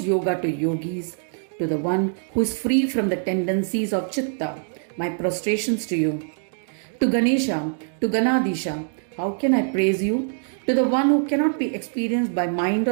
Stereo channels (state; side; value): silent; left; digital silence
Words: yoga to yogis, to the one who is free from the tendencies of Chitta, my prostrations to you. To Ganesha, to Ganadisha, how can I praise you? To the one who cannot be experienced by mind